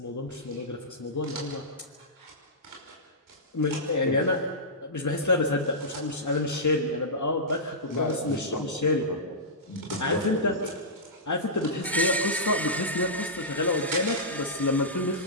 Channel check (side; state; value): both; normal; correlation -0.15